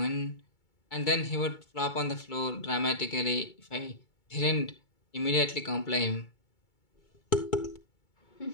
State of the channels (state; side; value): late; right; 2.3 ms